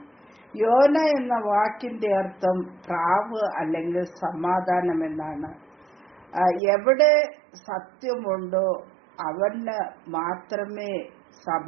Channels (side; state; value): left; drops out; at 6.6 s